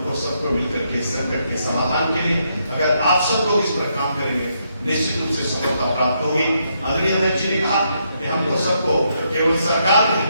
सबको मिलकर के संकट के समाधान के लिए अगर आप सब लोग इस पर काम करेंगे निश्चित रूप से सफलता प्राप्त होगी। आदरणीय अध्यक्ष जी ने कहा कि हमको सबको, केवल सरकार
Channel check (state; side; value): inverted; both; correlation -0.77